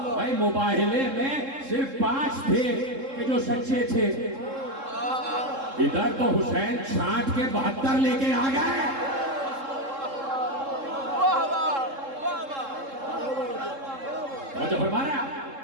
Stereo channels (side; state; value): left; late; 3.7 ms